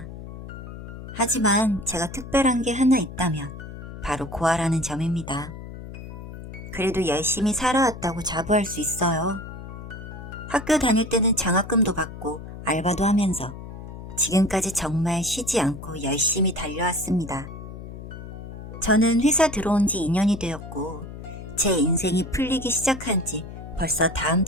하지만 제가 특별한 게 하나 있다면 바로 고아라는 점입니다. 그래도 열심히 살아왔다고 자부할 수 있어요. 학교 다닐 때는 장학금도 받고 알바도 하면서 지금까지 정말 쉬지 않고 열심히 달려왔습니다. 저는 회사 들어온 지 2년이 되었고 제 인생이 풀리기 시작한 지 벌써 다음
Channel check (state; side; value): noise; left; hum, 11 dB below the sound